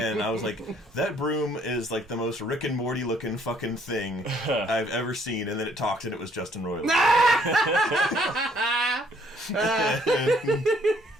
I was like, that broom is like the most Rick and Morty looking fucking thing I've ever seen. And then it talked and it was Justin Roiland.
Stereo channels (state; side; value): normal; both; correlation 0.64